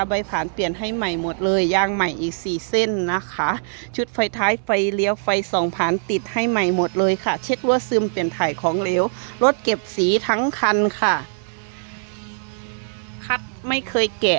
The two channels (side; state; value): left; silent; digital silence